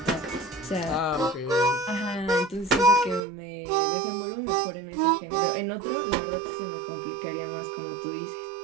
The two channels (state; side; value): drops out; left; at 3.2 s